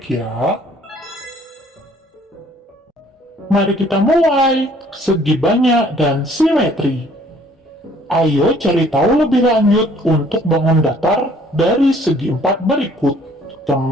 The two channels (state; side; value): normal; both; correlation 0.59